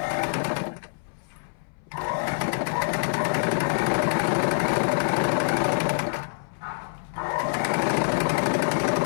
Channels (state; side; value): silent; right; 61 dB below the other